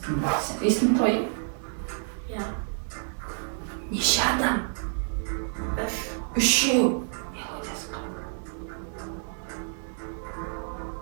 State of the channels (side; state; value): left; silent; 59 dB below the other